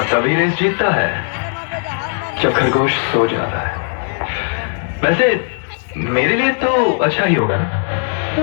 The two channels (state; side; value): silent; right; 60 dB below the other